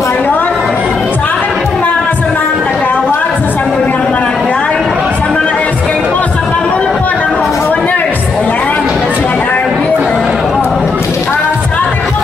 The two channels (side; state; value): right; quieter; 4.2 dB